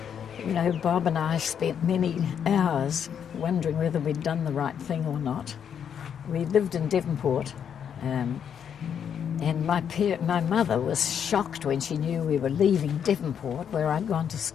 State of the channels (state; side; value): quieter; right; 8.1 dB